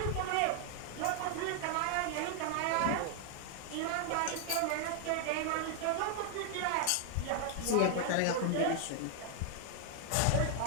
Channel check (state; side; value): different; both; correlation 0.00